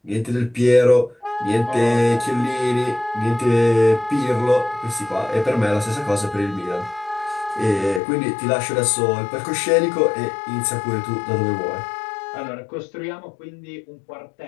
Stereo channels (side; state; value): right; drops out; at 8.0 s